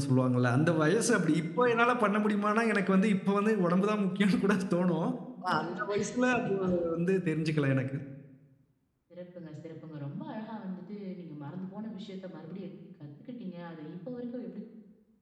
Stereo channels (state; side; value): identical; both; correlation 1.00